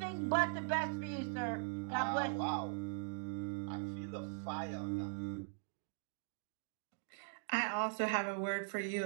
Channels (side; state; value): left; silent; digital silence